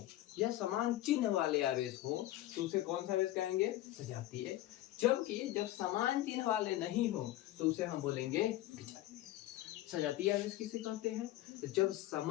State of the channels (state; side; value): quieter; right; 15.1 dB